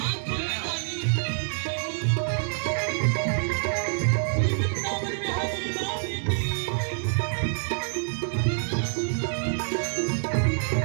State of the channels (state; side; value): silent; left; digital silence